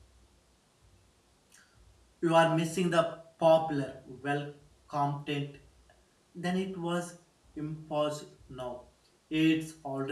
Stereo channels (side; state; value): both; identical; correlation 1.00